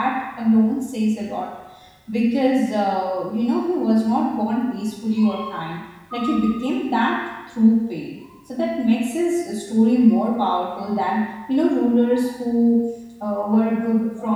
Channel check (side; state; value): both; identical; correlation 1.00